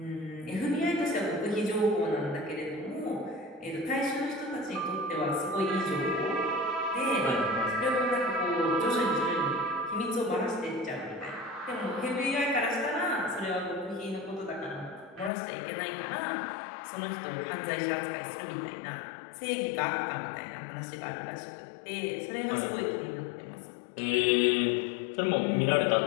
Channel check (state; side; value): drops out; right; at 15.3 s